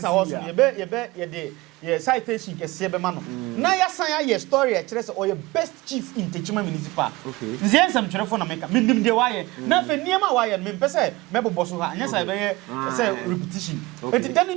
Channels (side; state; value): left; quieter; 21.1 dB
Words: awards ye de ye citation kese be ma no na ya san ya story e kire say o ye best chief in Techiman municipal okay nzie nsam kire fo na meka mindim de waye na fe niema waye me mpese me bobo so ha anya say be say repetition enti dani